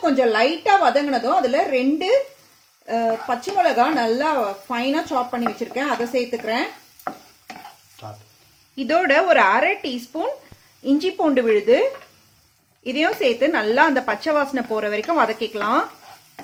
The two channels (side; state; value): both; identical; correlation 1.00